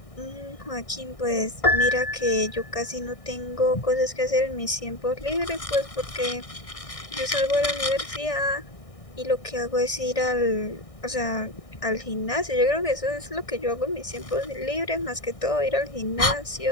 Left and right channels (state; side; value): late; right; 1.6 ms